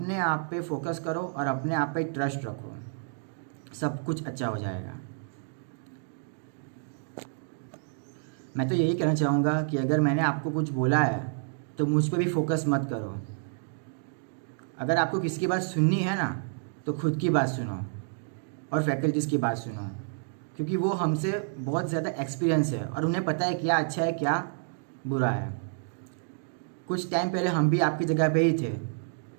आप पे फोकस करो और अपने आप पे ट्रस्ट रखो, सब कुछ अच्छा हो जाएगा। मैं तो यही कहना चाहूँगा कि अगर मैंने आपको कुछ बोला है तो मुझ पे भी फोकस मत करो। अगर आपको किसी की बात सुननी है ना तो खुद की बात सुनो और फैकल्टीज़ की बात सुनो, क्योंकि वो हमसे बहुत ज़्यादा एक्सपीरियंस है और उन्हें पता है क्या अच्छा है क्या बुरा है। कुछ टाइम पहले हम भी आपकी जगह पे ही थे,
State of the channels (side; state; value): left; silent; digital silence